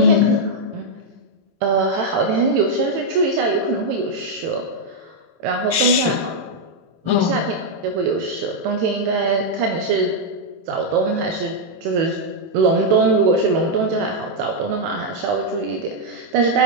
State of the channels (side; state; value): left; late; 18 ms